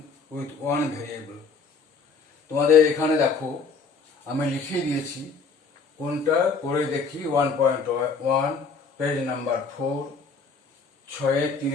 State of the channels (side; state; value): right; quieter; 4.7 dB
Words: with one variable. তোমাদের এখানে দেখো আমি লিখিয়ে দিয়েছি কোনটা করে দেখি 1.1 পেজ নাম্বার 4